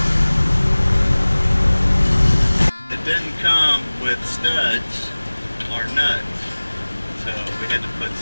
It didn't come with studs or nuts. had to put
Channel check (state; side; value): inverted; both; correlation -1.00